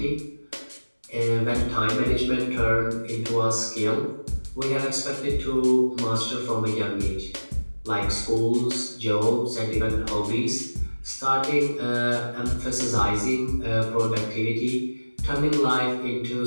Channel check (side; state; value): both; inverted; correlation -1.00